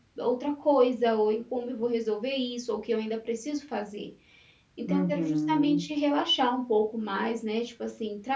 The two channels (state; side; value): identical; both; correlation 1.00